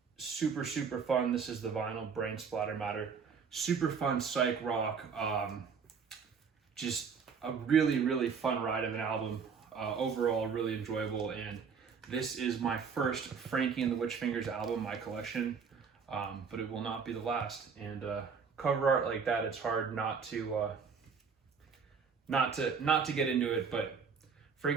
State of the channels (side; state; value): left; quieter; 6.0 dB